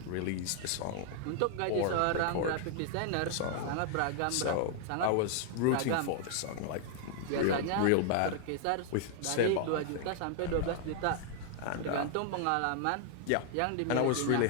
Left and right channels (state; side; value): different; both; correlation 0.00